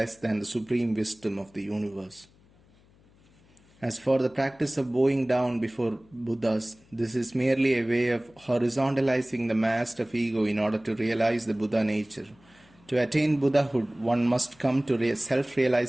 than the supreme wisdom of the universe. As for the practice of bowing down before Buddhas, this is merely a way of horizontalizing the mast of ego in order to realize the Buddha nature. To attain Buddhahood, one must come to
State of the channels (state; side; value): noise; left; hum, 30 dB below the sound